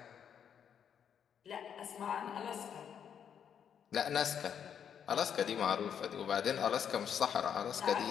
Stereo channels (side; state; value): right; quieter; 8.2 dB